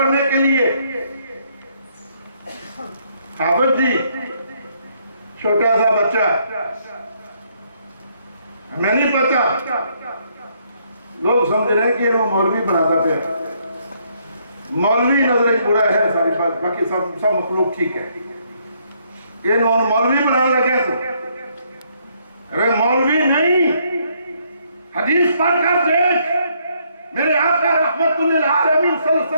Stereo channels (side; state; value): both; inverted; correlation -0.70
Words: کے لیے. حافظ جی چھوٹا سا بچہ ہے، ہمیں نہیں پتا، لوگ سمجھ رہے ہیں کہ وہ مولوی بناتا پہ. مولوی نظر ایک بڑا ہے، ساری بات باقی سب مخلوق ٹھیک ہے. یہ انہوں نے مولوی بنانا لگا تو ارے مولوی نہیں، حدیث پڑھ کر دیکھ. میرے آقا رحمت للعالمین صلی اللہ علیہ